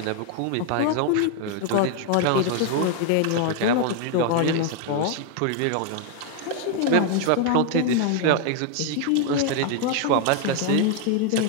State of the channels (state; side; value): different; both; correlation 0.00